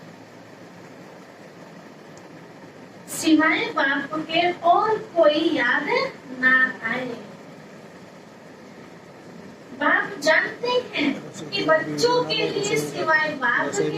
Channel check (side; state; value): both; identical; correlation 1.00